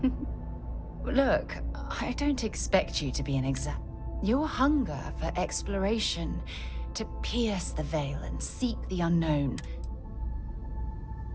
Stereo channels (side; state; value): both; identical; correlation 1.00